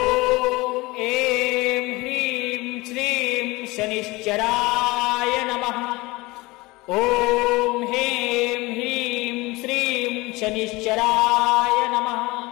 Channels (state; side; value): quieter; right; 22.1 dB